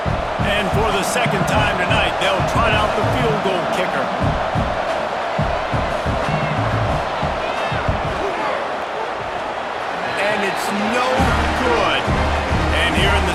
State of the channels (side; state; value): both; identical; correlation 1.00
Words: And for the second time tonight, they'll trot out the field goal kicker. And it's no good. And here in